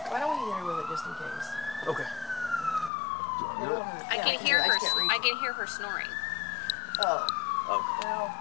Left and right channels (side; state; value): right; drops out; at 2.9 s